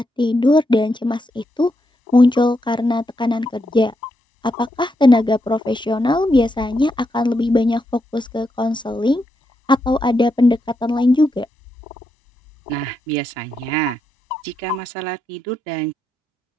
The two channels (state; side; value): normal; both; correlation 0.82